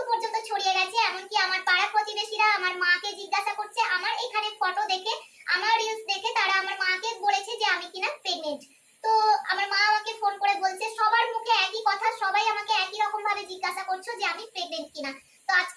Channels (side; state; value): both; identical; correlation 1.00